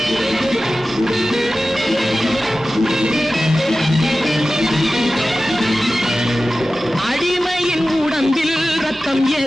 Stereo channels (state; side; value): normal; both; correlation 0.95